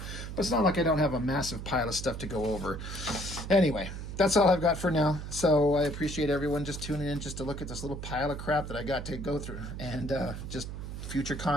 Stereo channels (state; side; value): noise; right; hum, 8 dB below the sound